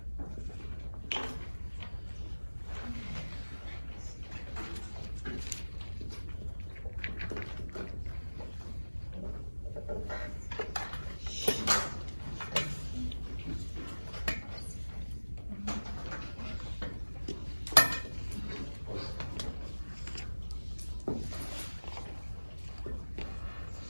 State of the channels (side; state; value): both; inverted; correlation -1.00